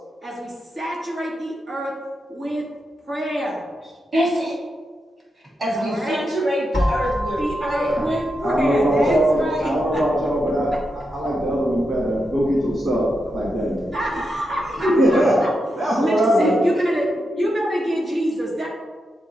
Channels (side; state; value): both; normal; correlation 0.86